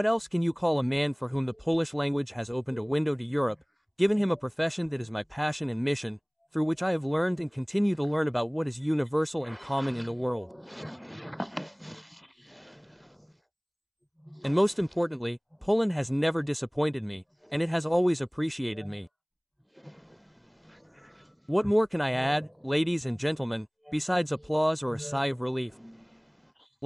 else can you call a man for whom the Polish language has opened a window to Europe, given him a profession that is my passion and mission, through which I have learned and continue to learn about what is universal and common in the world. And most importantly, Poland has never disappointed me, and it has always appreciated me. What more can I add, ladies and gentlemen, besides applause or a sigh of relief?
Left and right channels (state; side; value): identical; both; correlation 1.00